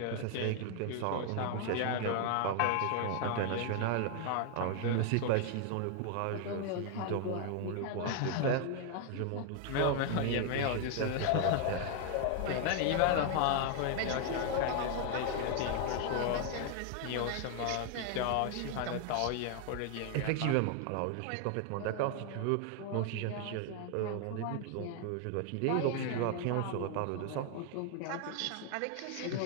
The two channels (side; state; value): both; different; correlation 0.00